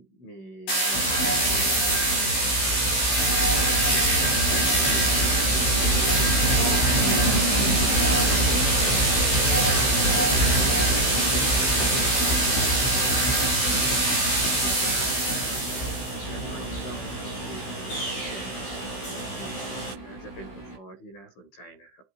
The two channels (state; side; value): late; right; 16 ms